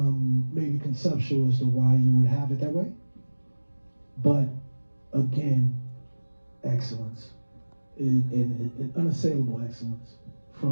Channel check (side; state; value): both; inverted; correlation -1.00